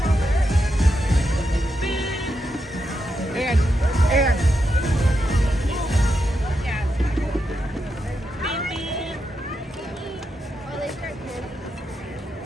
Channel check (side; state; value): both; normal; correlation 0.84